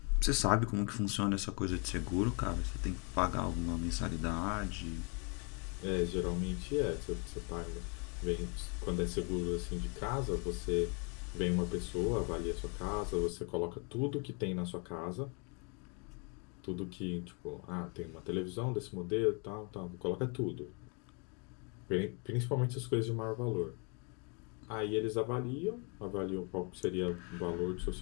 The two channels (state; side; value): quieter; right; 35.0 dB